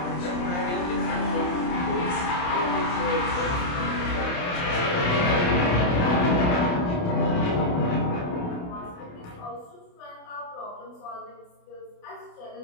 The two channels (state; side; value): late; right; 28 ms